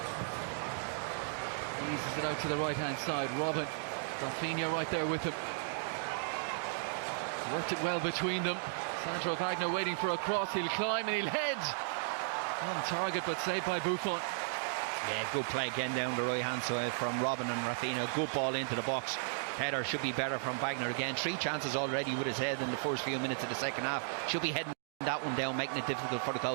Eases it out to the right hand side. Robin, Rafinha right there with him. Worked it well between them. Sandro Wagner waiting for a cross. He'll climb and he'll head on target, but saved by Buffon. Yeah, good play again down the right hand side from Robin and Rafinha. Good ball into the box. Header should be better from Wagner again. 3 chances already with his head in the first few minutes of the second half. Should be heading that one down, making it difficult for the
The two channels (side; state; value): left; silent; digital silence